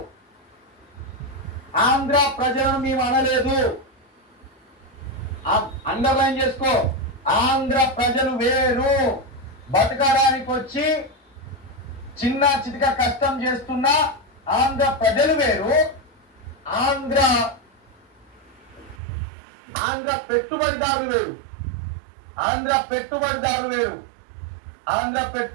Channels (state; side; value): drops out; left; at 18.9 s